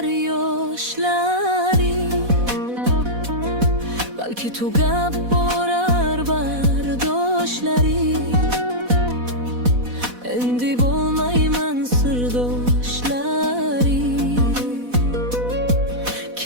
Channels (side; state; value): left; late; 4.1 ms